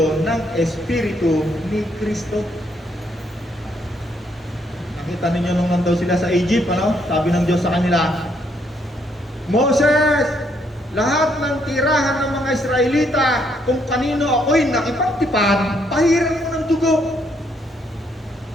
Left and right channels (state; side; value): normal; both; correlation 0.72